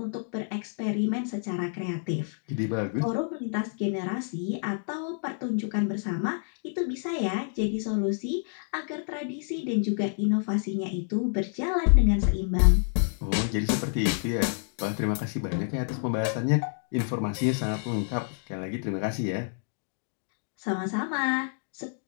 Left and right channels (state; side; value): silent; right; digital silence